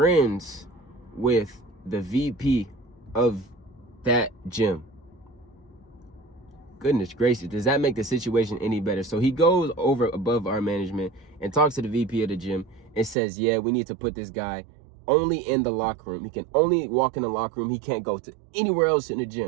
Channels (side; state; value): left; drops out; at 13.2 s